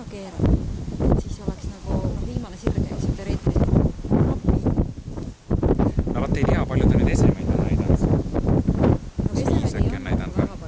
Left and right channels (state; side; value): identical; both; correlation 1.00